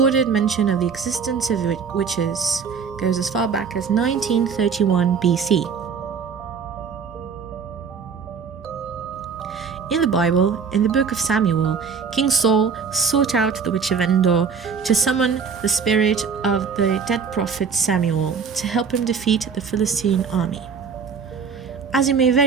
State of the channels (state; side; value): quieter; left; 6.0 dB